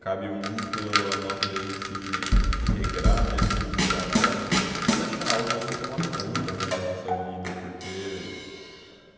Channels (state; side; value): identical; both; correlation 1.00